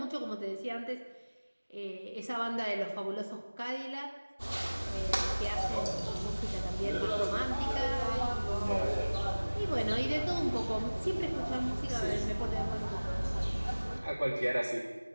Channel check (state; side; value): inverted; both; correlation -1.00